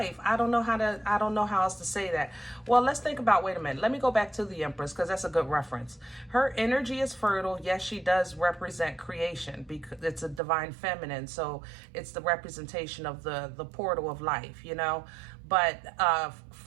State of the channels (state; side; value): drops out; left; at 10.4 s